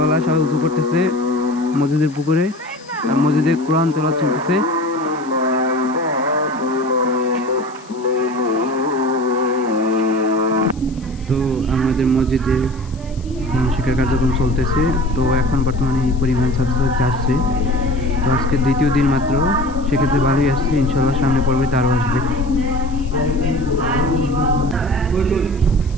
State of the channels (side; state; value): left; noise; hiss, 25 dB below the sound